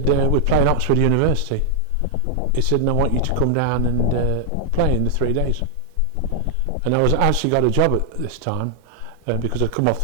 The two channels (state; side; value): different; both; correlation 0.00